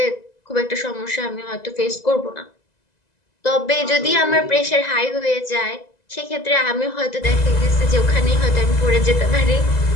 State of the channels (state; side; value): late; right; 2.0 ms